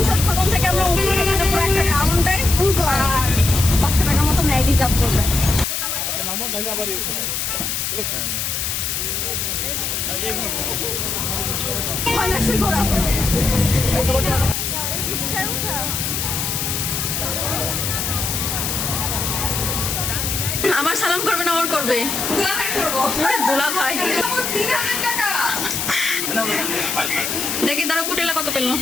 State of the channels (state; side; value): noise; left; hiss, 1 dB below the sound